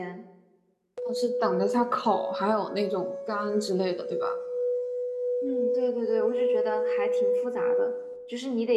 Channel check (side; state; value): both; identical; correlation 1.00